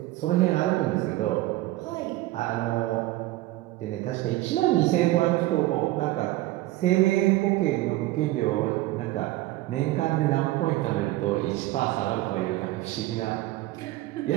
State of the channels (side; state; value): left; quieter; 17.2 dB